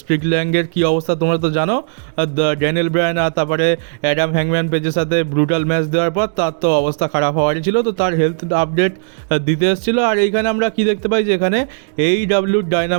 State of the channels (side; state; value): left; silent; digital silence